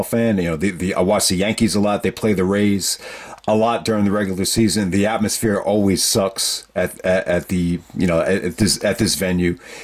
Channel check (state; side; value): identical; both; correlation 1.00